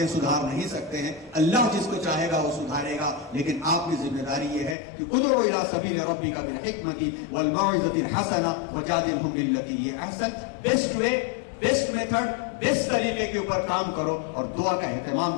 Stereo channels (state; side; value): drops out; right; at 4.8 s